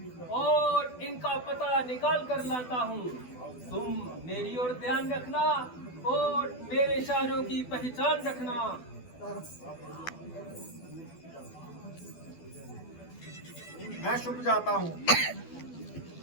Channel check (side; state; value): right; late; 12 ms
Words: और इनका पता निकाल कर लाता हूँ। तुम मेरी ओर ध्यान रखना और मेरे इशारों की पहचान रखना। मैं छुप जाता हूँ।